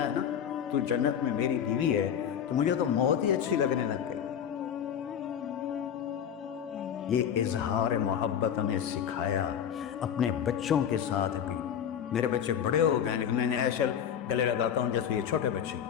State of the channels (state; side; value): quieter; right; 8.8 dB